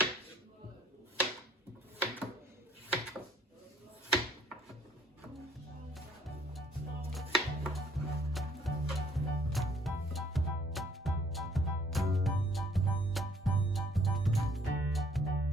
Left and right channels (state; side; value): normal; both; correlation 0.62